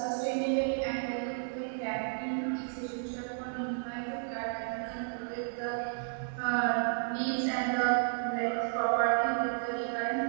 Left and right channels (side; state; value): left; silent; digital silence